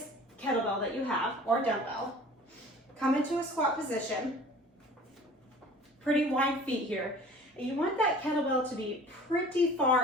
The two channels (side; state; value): both; normal; correlation 0.45